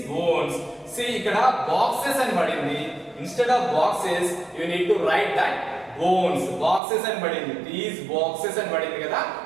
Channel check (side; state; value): left; drops out; at 6.8 s